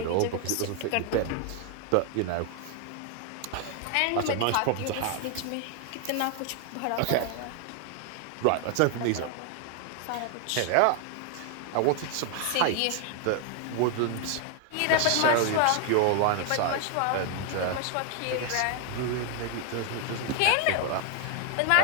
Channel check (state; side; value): different; both; correlation 0.00